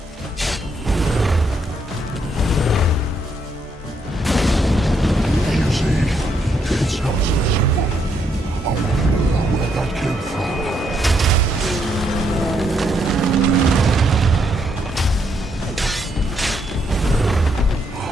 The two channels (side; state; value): both; normal; correlation 0.75